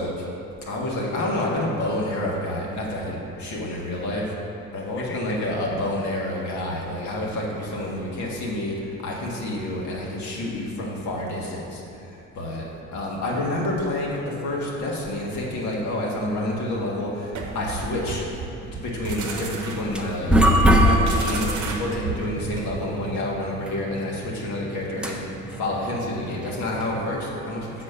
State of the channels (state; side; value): normal; both; correlation 0.36